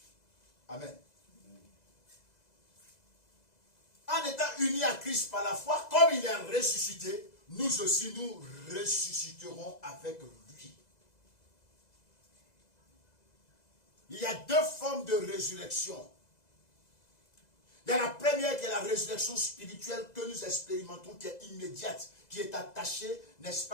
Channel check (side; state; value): right; late; 2.0 ms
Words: Amen. En étant unis à Christ par la foi, comme il est ressuscité, nous aussi nous ressusciterons avec lui. Il y a deux formes de résurrection. Il y a la première qui est la résurrection spirituelle que nous expérimentons, qui est immédiate, qui est attachée, n'est-ce